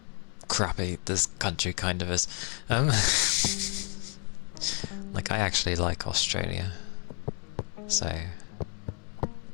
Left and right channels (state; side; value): quieter; right; 39.1 dB